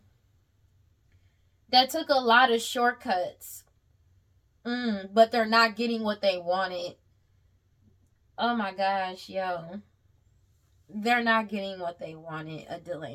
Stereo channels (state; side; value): identical; both; correlation 1.00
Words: that took a lot of shortcuts. But they're not getting what they wanted. Oh my gosh, yo. They're not getting what they wanted. A